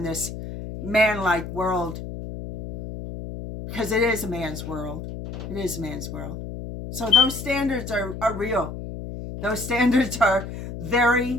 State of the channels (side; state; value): left; noise; hum, 9 dB below the sound